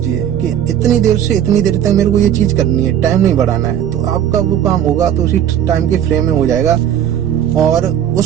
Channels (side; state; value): left; quieter; 10.1 dB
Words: कि इतनी देर से इतनी देर तक मेरे को ये चीज करनी है, टाइम नहीं बढ़ाना है। तो आपका वो काम होगा तो उसी टाइम के फ्रेम में हो जाएगा, और